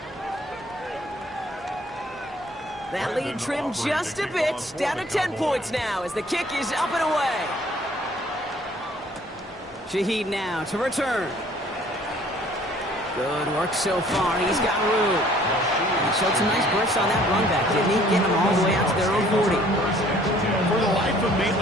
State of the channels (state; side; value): normal; both; correlation 0.57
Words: That lead trimmed just a bit, down to 10 points now as the kick is up and away. Shaheed now to return. Good work so far. He's got room. He showed some nice bursts on that run back, didn't he? Getting them all the way out to their own 40. For the life of me,